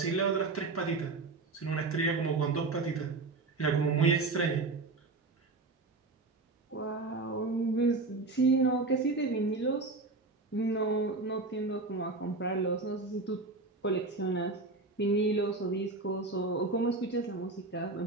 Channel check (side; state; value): left; quieter; 3.5 dB